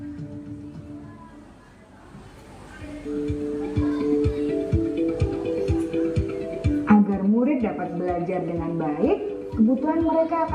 Agar murid kebutuhan mereka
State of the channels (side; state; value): both; identical; correlation 1.00